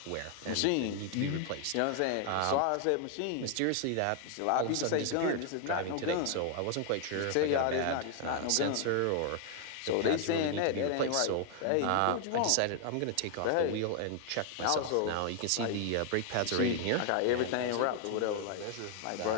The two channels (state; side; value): different; both; correlation 0.00